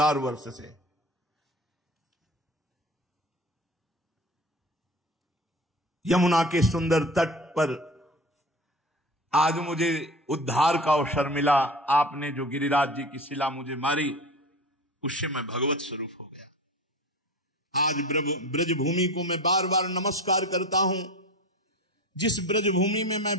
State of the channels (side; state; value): both; normal; correlation 0.34